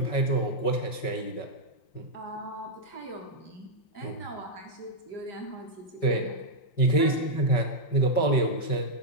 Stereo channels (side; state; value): right; late; 5.2 ms